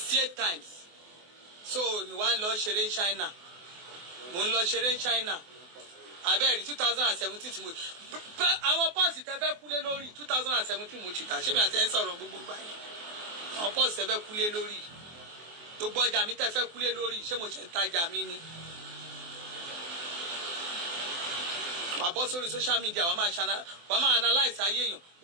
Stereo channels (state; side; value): late; left; 24 ms